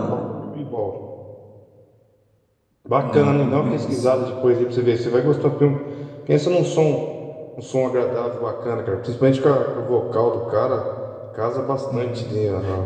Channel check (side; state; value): both; identical; correlation 1.00